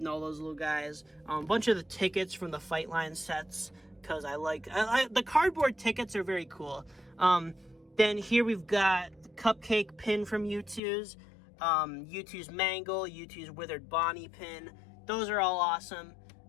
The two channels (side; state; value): right; drops out; at 10.8 s